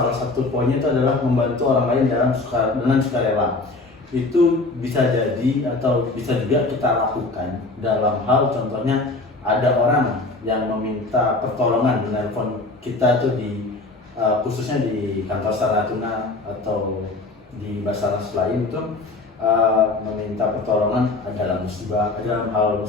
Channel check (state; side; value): quieter; right; 3.3 dB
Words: satu poinnya itu adalah membantu orang lain dengan sukarela. Itu bisa jadi atau bisa juga kita lakukan dalam hal contohnya ada orang yang meminta pertolongan menelpon kita tuh khususnya di kantor Natuna atau di Basarnas lain itu meminta pertolongan dalam hal